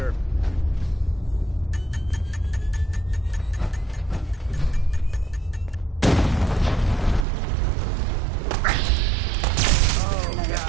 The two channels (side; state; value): left; drops out; at 7.2 s